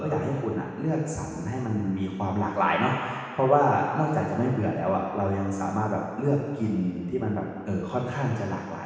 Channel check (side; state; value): both; identical; correlation 1.00